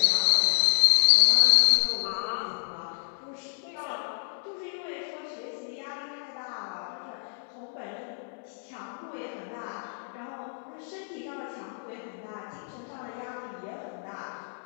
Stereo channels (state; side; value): silent; right; digital silence